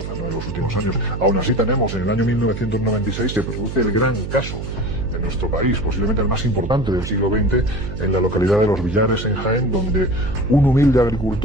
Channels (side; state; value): right; noise; hum, 7 dB below the sound